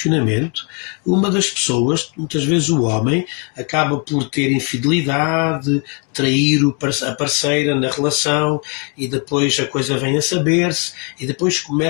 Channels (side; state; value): right; quieter; 36.2 dB